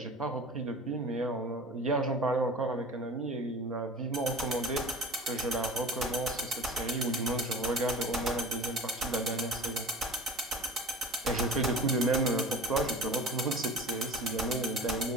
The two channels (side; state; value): both; normal; correlation 0.38